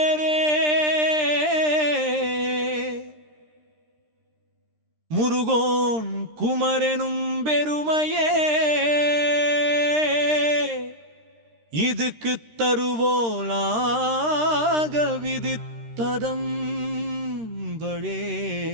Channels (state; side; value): late; left; 13 ms